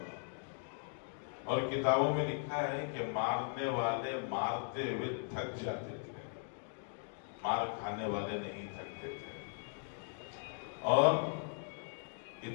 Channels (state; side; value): silent; right; 52 dB below the other